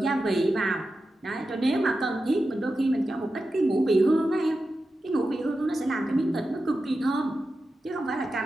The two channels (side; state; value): both; normal; correlation 0.91